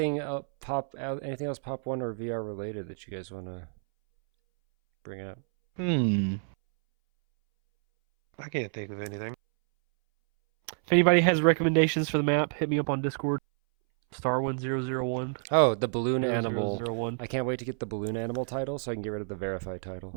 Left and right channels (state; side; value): silent; left; 59 dB below the other